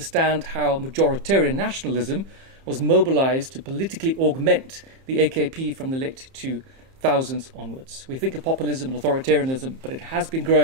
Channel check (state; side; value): late; left; 30 ms